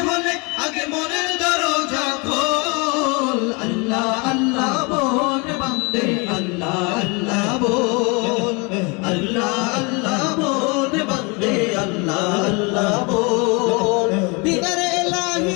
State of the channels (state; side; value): quieter; right; 29.8 dB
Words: होले, आगे मोनेर दरजा खोल। अल्लाह अल्लाह बोल बंदे, अल्लाह अल्लाह बोल, अल्लाह अल्लाह बोल बंदे, अल्लाह अल्लाह बोल। दीदारे